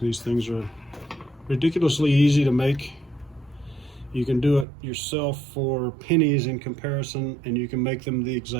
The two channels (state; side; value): drops out; left; at 4.7 s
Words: things are ridiculously easy to make. You can do it yourself for pennies in comparison, and you can make them the